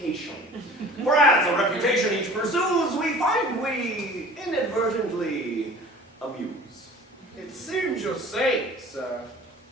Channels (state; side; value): normal; both; correlation 0.45